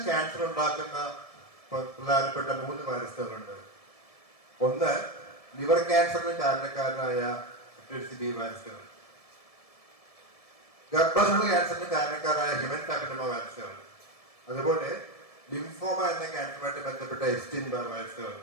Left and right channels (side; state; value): right; late; 1.7 ms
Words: ക്യാൻസർ ഉണ്ടാക്കുന്ന പ്രധാനപ്പെട്ട 3 വൈറസുകളുണ്ട്. ഒന്ന്, ലിവർ ക്യാൻസറിന് കാരണക്കാരനായ ബി വൈറസുകൾ. ഗർഭാശയ ക്യാൻസറിന് കാരണക്കാരായ ഹ്യൂമൻ പാപ്പിലോമ വൈറസുകൾ. അതുപോലെ ലിംഫോമ എന്ന ക്യാൻസറുമായിട്ട് ബന്ധപ്പെട്ട എപ്സ്റ്റീൻ ബാർ വൈറസുകൾ.